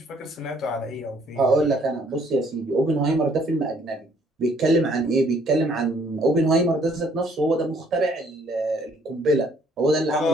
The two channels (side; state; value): both; normal; correlation 0.63